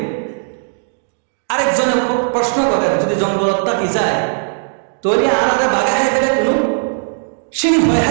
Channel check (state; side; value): silent; left; digital silence